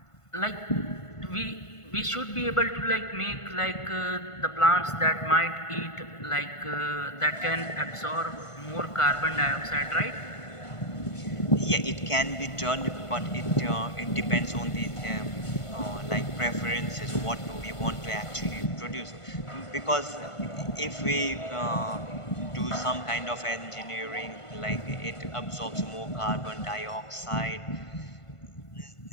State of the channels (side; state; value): right; late; 1.5 ms